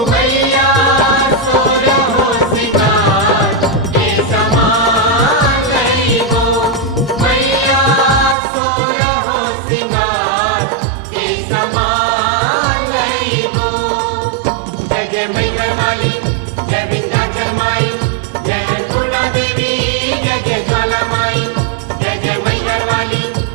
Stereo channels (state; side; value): drops out; left; at 8.3 s